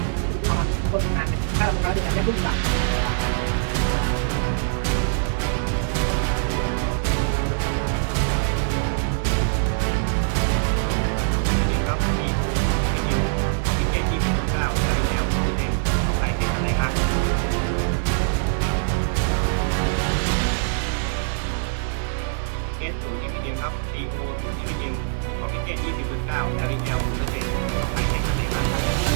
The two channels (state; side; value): silent; left; digital silence